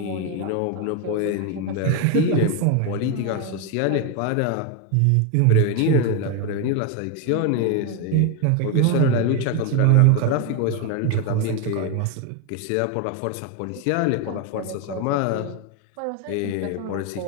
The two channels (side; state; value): both; different; correlation 0.02